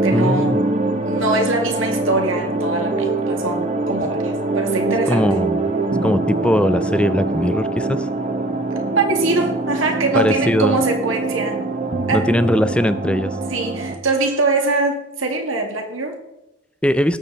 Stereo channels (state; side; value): normal; both; correlation 0.46